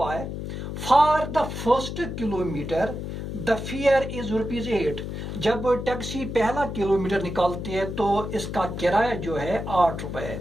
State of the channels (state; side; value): noise; left; hum, 6 dB below the sound